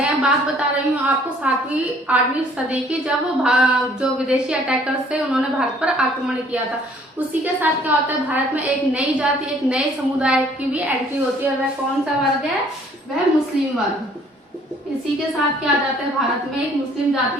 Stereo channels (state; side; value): normal; both; correlation 0.59